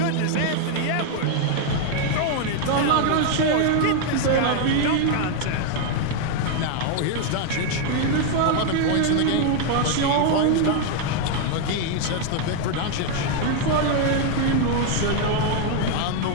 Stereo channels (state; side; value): different; both; correlation 0.00